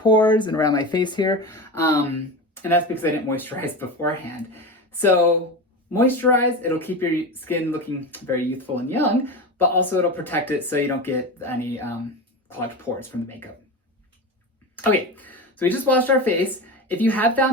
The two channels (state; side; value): normal; both; correlation 0.24